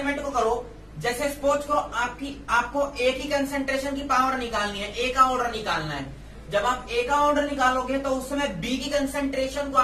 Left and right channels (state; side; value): identical; both; correlation 1.00